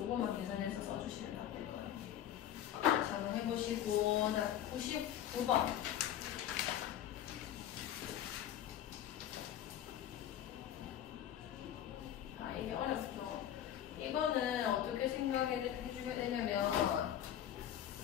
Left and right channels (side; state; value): right; quieter; 10.9 dB